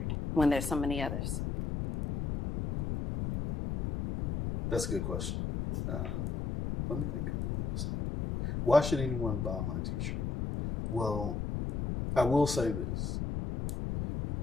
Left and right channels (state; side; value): noise; left; rumble, 2 dB below the sound